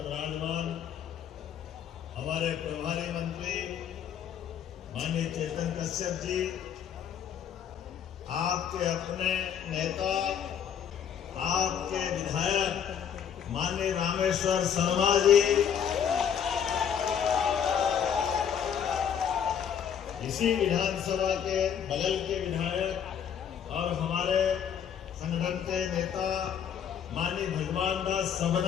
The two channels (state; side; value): quieter; right; 8.3 dB